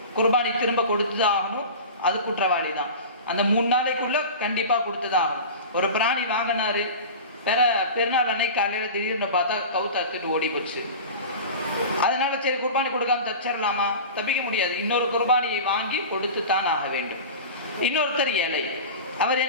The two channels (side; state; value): both; inverted; correlation -0.32